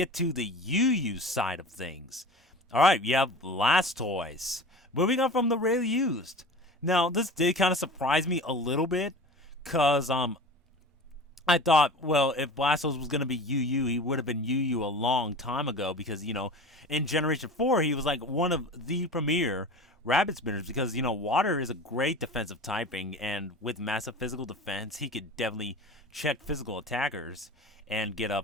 to the UU side of things. All right, you have Blastoise. Moving on from the rarely used. Now, this did kind of surprise me a little bit, because I thought, well, if Blastoise was going to be UU, he would have been UU a long time ago, because, in Generation 4, he was like one of the premier rabbit spinners, because, water is a great defensive typing, and with massive physical defense, he could definitely check physical attackers and get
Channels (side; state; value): both; normal; correlation 0.36